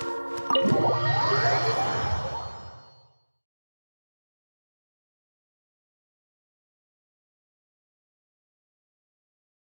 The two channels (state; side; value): inverted; both; correlation -1.00